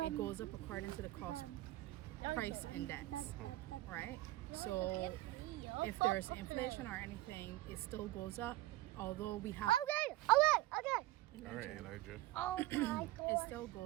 goes up according to the cost price index, right? So if there's inflation or anything, it still goes up. Although we have Okay. All right, Elijah. It still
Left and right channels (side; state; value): left; quieter; 17.1 dB